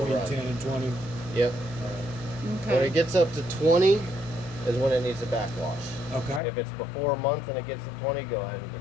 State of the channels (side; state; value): right; drops out; at 6.4 s